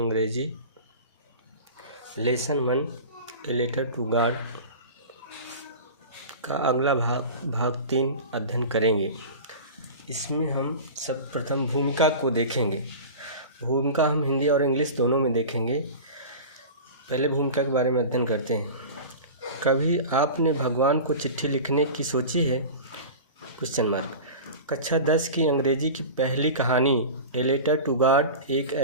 lesson 1 a letter to God का अगला भाग 3 अध्ययन करेंगे। इसमें हम सर्वप्रथम भूमिका को देखेंगे। भूमिका हम हिंदी और इंग्लिश दोनों में देखेंगे। पहले भूमिका के बारे में अध्ययन करते हैं। कभी आपने भगवान को चिट्ठी लिखने की सोची है? Question mark. कक्षा 10 की अंग्रेजी की पहली कहानी ए लेटर टू गॉड एक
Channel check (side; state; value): both; inverted; correlation -0.33